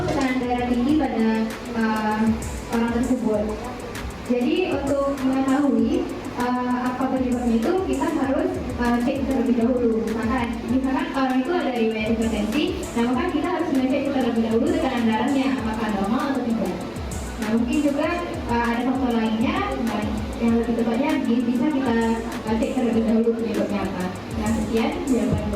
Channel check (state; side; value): identical; both; correlation 1.00